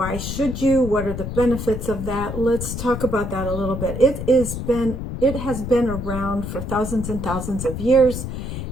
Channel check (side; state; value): left; noise; rumble, 6 dB below the sound